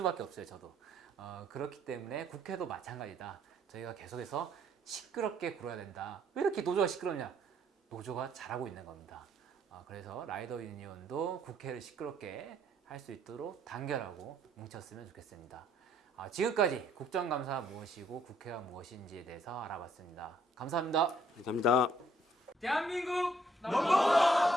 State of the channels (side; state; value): both; normal; correlation 0.66